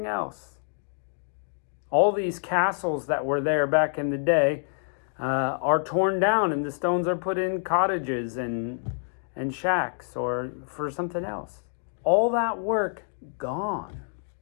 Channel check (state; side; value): silent; right; digital silence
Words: else? All these castles that were there back in the day are torn down, and the stones are put in cottages and shacks or for something else. All that work gone.